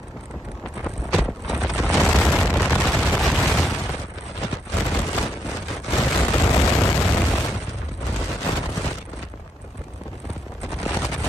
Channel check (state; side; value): normal; both; correlation 0.80